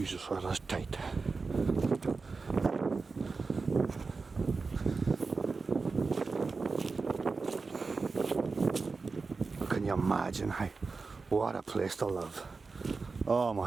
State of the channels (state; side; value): quieter; left; 4.3 dB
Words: that is tight. Can you imagine? What a place to live. Oh